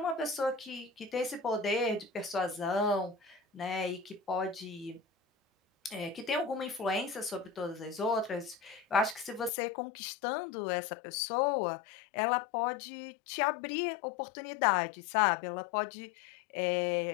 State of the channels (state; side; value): drops out; right; at 9.5 s